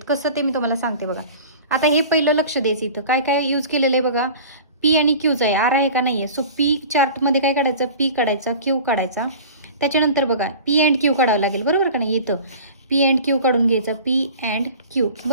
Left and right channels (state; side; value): inverted; both; correlation -0.40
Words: कसं ते मी तुम्हाला सांगते बघा. आता हे पहिलं लक्ष द्यायचं, इथं काय काय यूज केलेलं आहे बघा. पी आणि क्यूचा आहे, आर आहे का नाही आहे. सो पी चार्टमध्ये काय काढायचं, पी काढायचा, क्यू काढायचा. त्याच्यानंतर बघा पी अँड क्यू काढावं लागेल बरोबर का नाही. इथं पी अँड क्यू काढून घ्यायचं, पी अँड क्यू